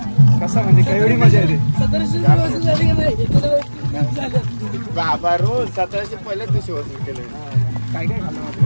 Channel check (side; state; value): both; inverted; correlation -1.00